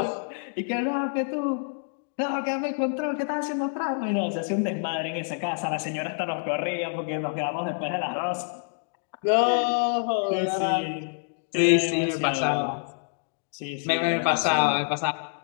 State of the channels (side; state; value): right; silent; digital silence